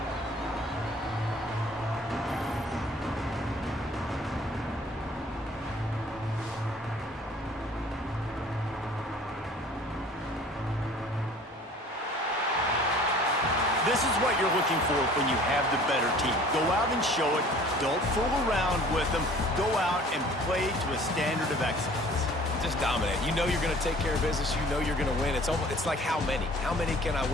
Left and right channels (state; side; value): normal; both; correlation 0.50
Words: This is what you're looking for when you have the better team. Go out and show it. Don't fool around with them. Go out and play to a standard of excellence. Just dominate. You know you're going to take care of business. You know you're going to win. It's like how many? How many can I